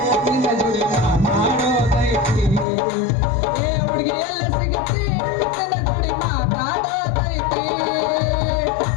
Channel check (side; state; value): right; drops out; at 2.7 s